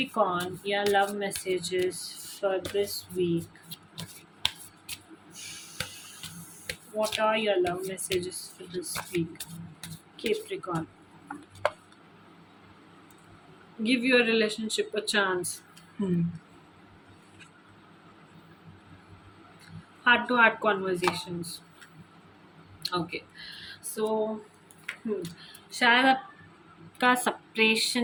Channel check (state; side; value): identical; both; correlation 1.00